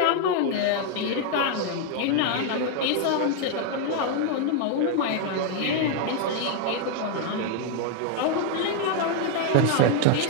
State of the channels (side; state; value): both; different; correlation 0.00